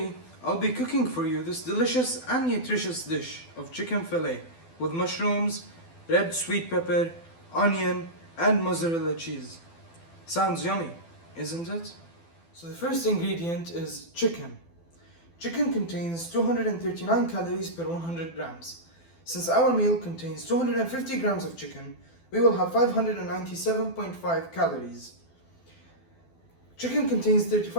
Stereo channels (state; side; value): late; right; 12 ms